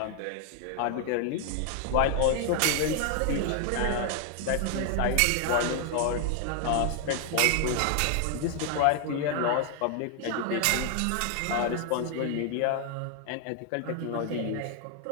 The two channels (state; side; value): different; both; correlation 0.00